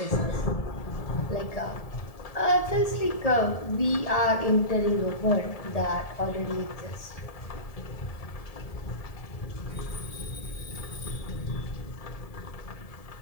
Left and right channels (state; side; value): late; right; 1.7 ms